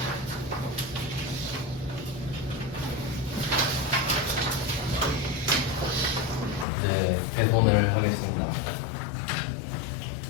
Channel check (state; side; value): drops out; right; at 6.7 s